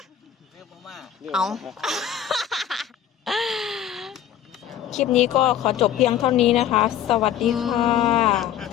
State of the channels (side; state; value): right; quieter; 10.1 dB